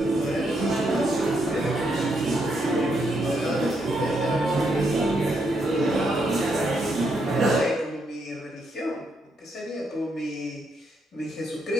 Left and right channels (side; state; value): both; normal; correlation 0.78